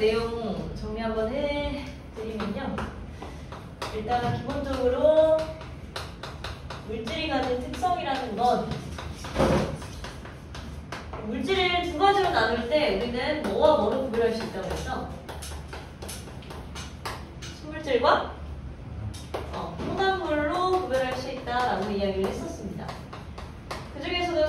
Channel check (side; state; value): both; identical; correlation 1.00